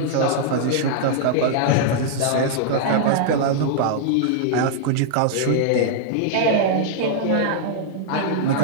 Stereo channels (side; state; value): both; different; correlation -0.01